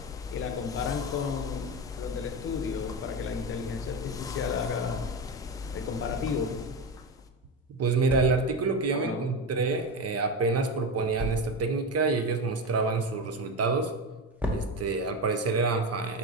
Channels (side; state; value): both; normal; correlation 0.19